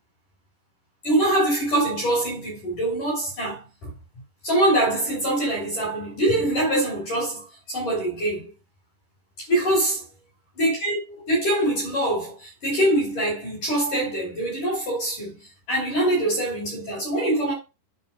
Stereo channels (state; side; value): late; right; 10 ms